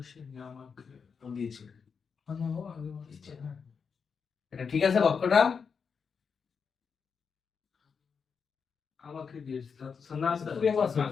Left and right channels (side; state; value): right; quieter; 5.9 dB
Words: এটা ঠিক আছে বাক্যটা? আমাকে দিয়েছে